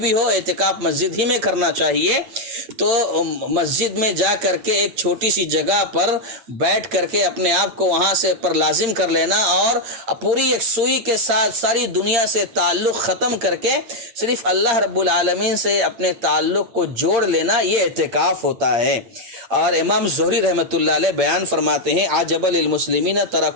ہو، اعتکاف مسجد ہی میں کرنا چاہیے۔ تو مسجد میں جا کر کے ایک چھوٹی سی جگہ پر بیٹھ کر کے اپنے آپ کو وہاں سے پر لازم کر لینا، اور پوری ایک سوئی کے ساتھ ساری دنیا سے تعلق ختم کر کے صرف اللہ رب العالمین سے اپنے تعلق کو جوڑ لینا، یہ اعتکاف ہوتا ہے۔ اور امام زہری رحمۃ اللہ علیہ بیان فرماتے ہیں عجب للمسلمین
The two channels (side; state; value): left; late; 8.8 ms